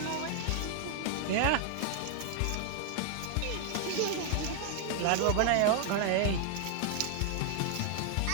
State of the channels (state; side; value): different; both; correlation 0.00